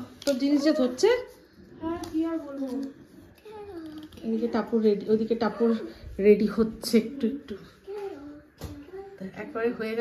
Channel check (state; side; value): identical; both; correlation 1.00